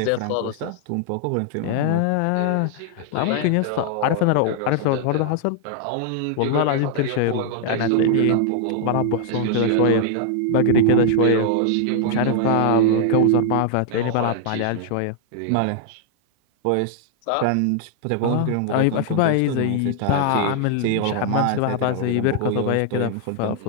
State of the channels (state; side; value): different; both; correlation 0.00